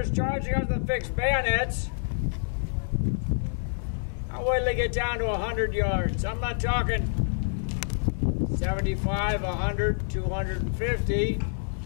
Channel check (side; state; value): right; silent; digital silence